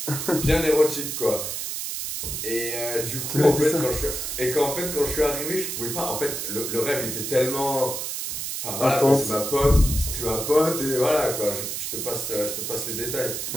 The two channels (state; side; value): noise; right; hiss, 4 dB below the sound